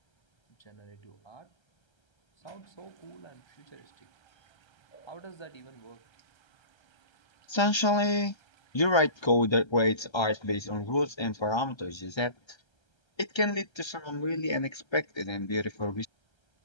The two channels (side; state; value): right; late; 1.3 ms